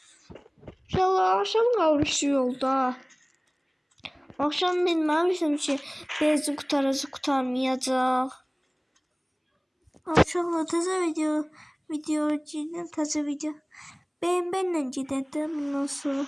İnşallah akşam qalmışdı yolda. Akşam bilməmişdim ki, benzin qutaracaq, qurtarmayacaq. Akşamla təzə video çəkdim, təzə video. Benimlə gedəndə bundan sonra.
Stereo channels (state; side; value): identical; both; correlation 1.00